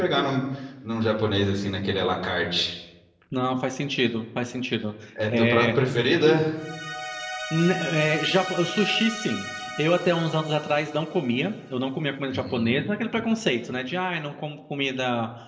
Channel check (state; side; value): identical; both; correlation 1.00